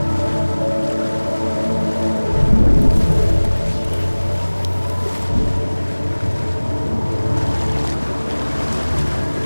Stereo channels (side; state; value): both; inverted; correlation -1.00